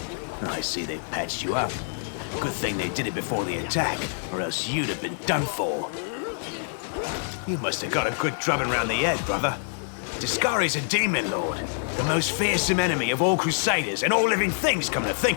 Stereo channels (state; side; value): silent; right; 61 dB below the other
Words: I see they've patched you up. Good thing they did it before the attack, or else you'd have been done for. You must have got a good drubbing round the head, brother. Discari's a demon lord, the most fearsome enemy of all crusaders and all living things, come to